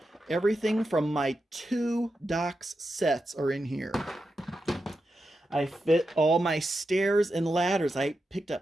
everything from my 2 docks sets are in here. I fit all my stairs and ladders. I picked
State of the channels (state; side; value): normal; both; correlation 0.88